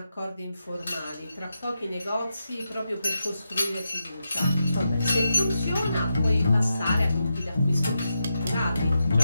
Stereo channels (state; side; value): inverted; both; correlation -0.87